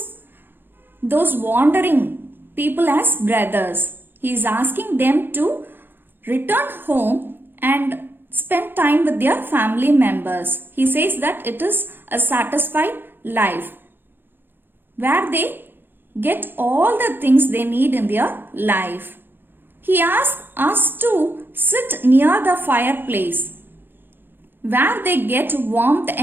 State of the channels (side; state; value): left; late; 0.099 ms